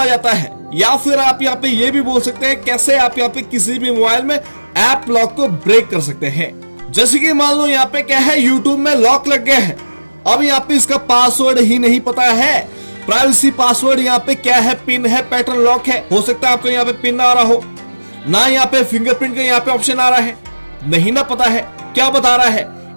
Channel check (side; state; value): both; inverted; correlation -1.00